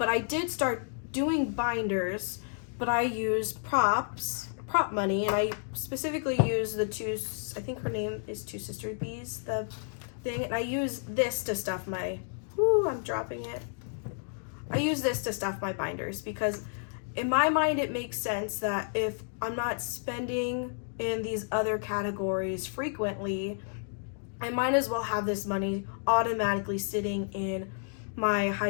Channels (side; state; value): right; silent; digital silence